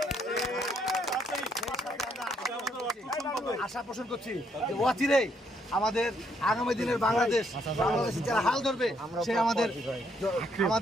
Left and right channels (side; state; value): both; normal; correlation 0.72